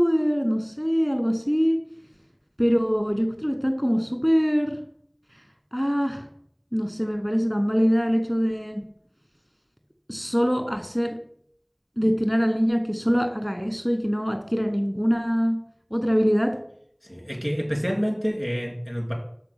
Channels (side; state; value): both; identical; correlation 1.00